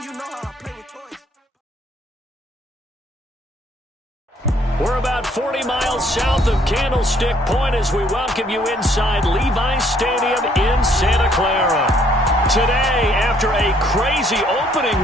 You know how I play with toys. We're about 40 miles south of Candlestick Point as we welcome you inside Levi's Stadium in Santa Clara. Today, after a crazy opening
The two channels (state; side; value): normal; both; correlation 0.65